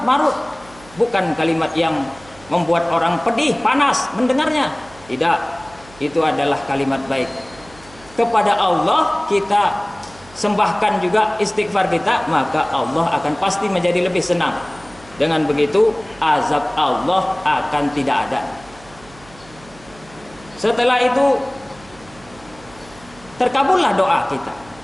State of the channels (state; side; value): noise; right; hum, 23 dB below the sound